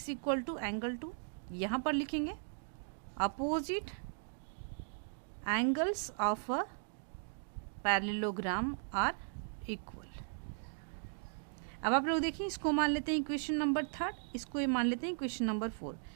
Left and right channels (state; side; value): silent; left; digital silence